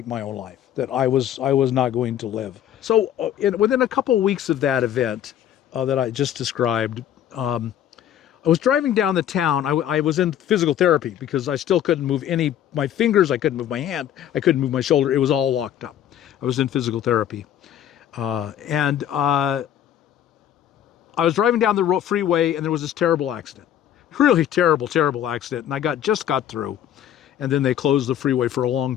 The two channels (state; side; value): quieter; right; 10.5 dB